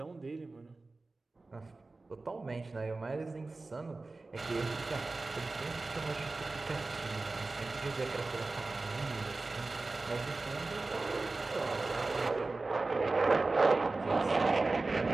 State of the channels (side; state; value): left; quieter; 3.4 dB